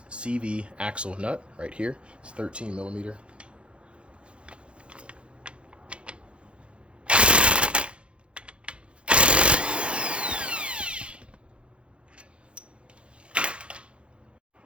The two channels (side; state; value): left; late; 0.058 ms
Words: CV axle nut right here. It's 13 millimeter.